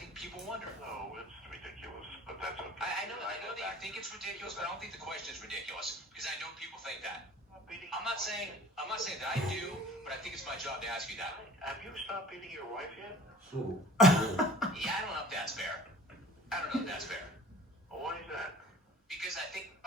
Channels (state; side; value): normal; both; correlation 0.47